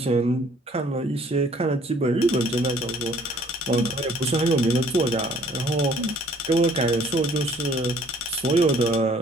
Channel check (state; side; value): normal; both; correlation 0.58